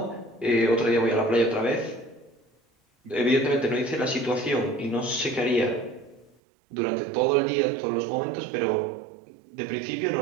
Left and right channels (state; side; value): drops out; left; at 6.3 s